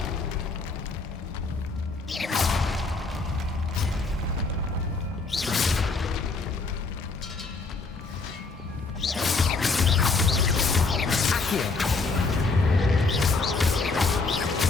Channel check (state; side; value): quieter; right; 4.0 dB